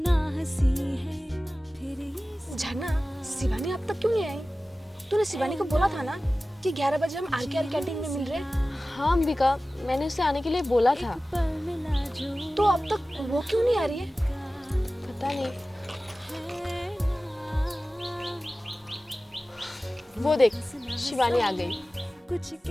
हंसी है फिर ये झरना, शिवानी अब तक क्यों नहीं आई? तूने शिवानी को बोला था ना कि 11 बजे हम आरकेआर कैंटीन में मिल रहे हैं। हाँ अंबिका, मैंने उसे आने के लिए बोला था। पल मिला जो तो अब तक वो क्यों नहीं आ रही है? पता नहीं। वो देख, शिवानी आ गई। कुछ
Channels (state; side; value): normal; both; correlation 0.96